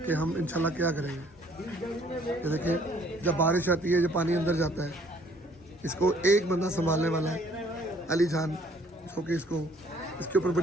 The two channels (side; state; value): both; normal; correlation 0.60